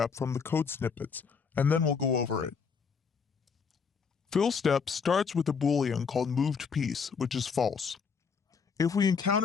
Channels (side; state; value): right; quieter; 5.8 dB